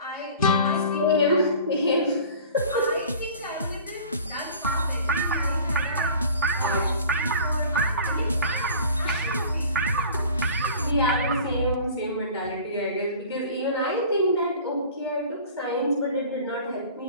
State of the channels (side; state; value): both; inverted; correlation -0.43